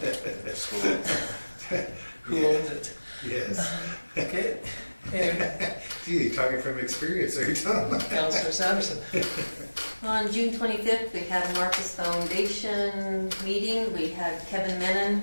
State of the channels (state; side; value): inverted; both; correlation -1.00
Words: Who owns it? Yes. Okay. Anyway, Gee, you're talking from experience, are you, Tom? Councillor Sanderson. On June 25th, we had a Marquis Foundation meeting. We had Kevin Menon